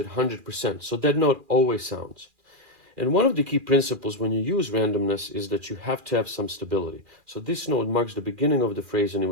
100%. So that note always sounds. And one of the key principles when you use randomness is that you have to have some stability. So this note marks the beginning of the phrase, and it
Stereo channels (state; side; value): late; left; 2.4 ms